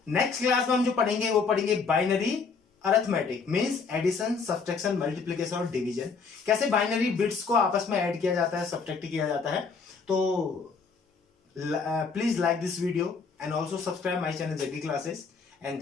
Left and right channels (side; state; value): right; quieter; 5.1 dB